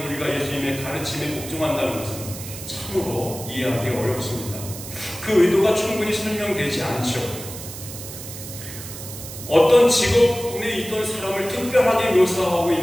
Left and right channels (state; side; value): noise; right; hiss, 11 dB below the sound